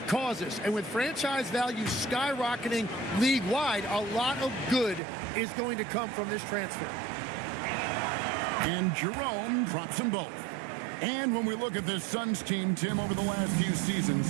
causes, and with franchise value skyrocketing league-wide, a lot of good is going to come from this transfer. And Jerome drops them both. And when we look at this Suns team, Tim, over the last few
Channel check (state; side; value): drops out; left; at 5.0 s